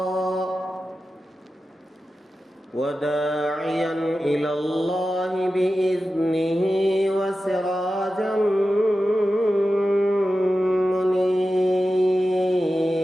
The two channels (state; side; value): normal; both; correlation 0.93